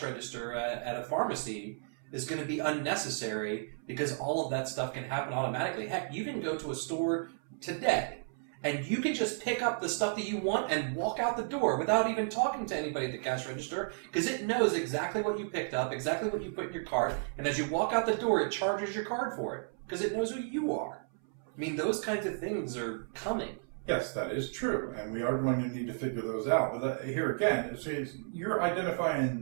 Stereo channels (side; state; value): left; silent; 56 dB below the other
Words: register at a pharmacy is going to be unnecessary because all of that stuff can happen automatically. Heck, you can go to a store today and you can just pick up the stuff that you want and walk out the door without even talking to anybody at the cash register because it knows exactly what you picked up, exactly what you put in your cart, and as you walk out the door, it charges your card for it because it knows who you are. I mean, those kinds of things are coming. Yes, that is true, and we are going to need to figure those out. But here again, you're